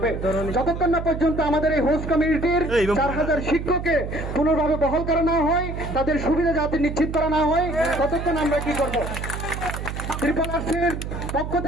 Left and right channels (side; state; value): right; noise; hum, 6 dB below the sound